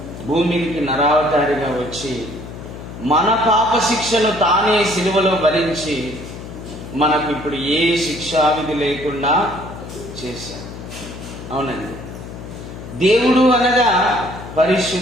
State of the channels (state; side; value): noise; left; hum, 12 dB below the sound